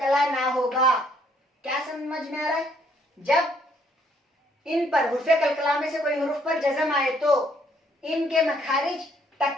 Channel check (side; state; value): both; normal; correlation 0.67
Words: ना होगा। क्या समझ में आ रहा है? जब इन पर हुर्फे कलकला में से कोई हुर्फ पर जज़म आए तो इनके मखारिज